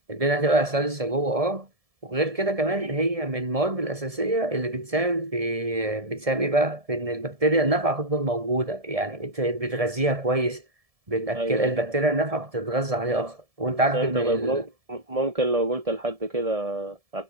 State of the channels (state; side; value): late; left; 1.7 ms